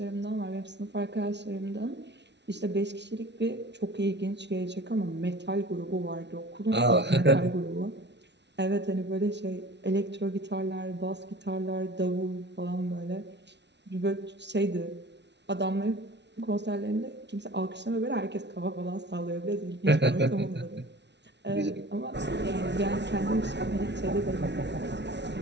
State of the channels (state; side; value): late; left; 0.50 ms